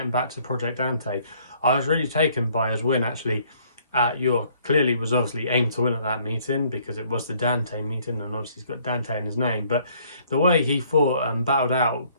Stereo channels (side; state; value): both; inverted; correlation -0.62